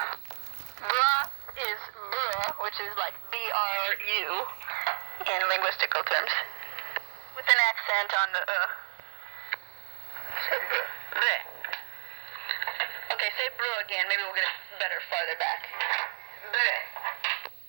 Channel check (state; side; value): silent; left; digital silence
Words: Broth is bruh, which is like B-R-U in linguistical terms, with an accent on the So bruh. Okay, say bruh again. Maybe we'll get it better farther back. Bruh.